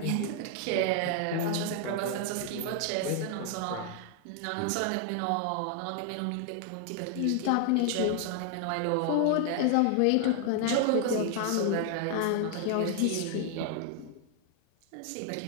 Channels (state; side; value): different; both; correlation 0.00